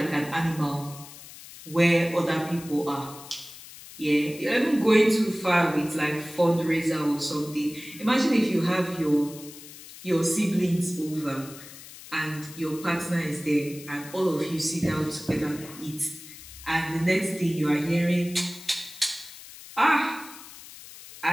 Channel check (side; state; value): left; noise; hiss, 16 dB below the sound